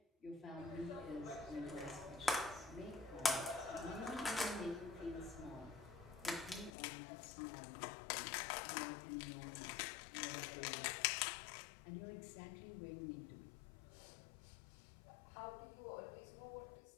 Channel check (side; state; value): right; drops out; at 6.7 s